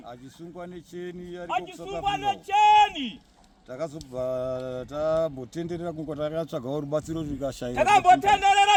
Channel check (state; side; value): identical; both; correlation 1.00